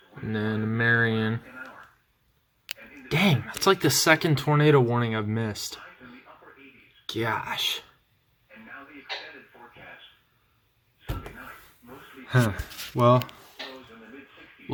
and then Marion. Dang, that's like the second tornado warning I've missed. Gosh. Huh. Well,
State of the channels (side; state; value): both; identical; correlation 1.00